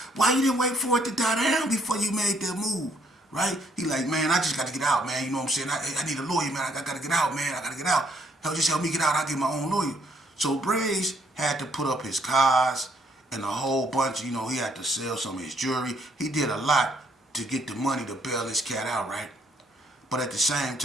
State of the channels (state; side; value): normal; both; correlation 0.68